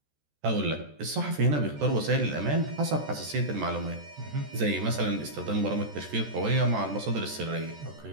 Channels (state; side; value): late; left; 14 ms